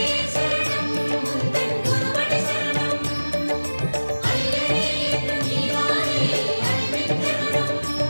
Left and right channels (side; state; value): both; inverted; correlation -1.00